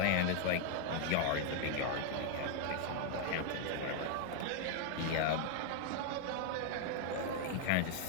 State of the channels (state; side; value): different; both; correlation 0.00